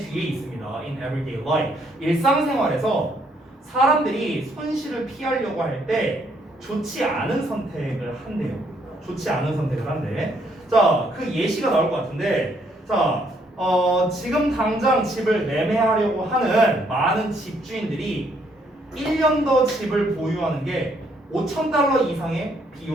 있습니다. In everyday life. 일상생활에서 사람들이 손실을 피하려고 할 때 좋지 않은 선택을 한대요. 좋지 않은 선택을 한대. 자, 그 예시가 나올 것 같은데 자, 지금 당장 집을 매매하려고 하는 많은 집주인들이 1년 더 집을 보유하는 게 $5,000 이상의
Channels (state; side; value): normal; both; correlation 0.70